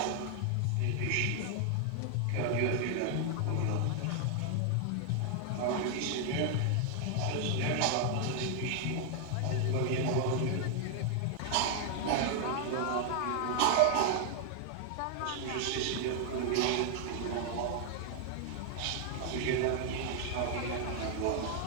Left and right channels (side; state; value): both; different; correlation 0.00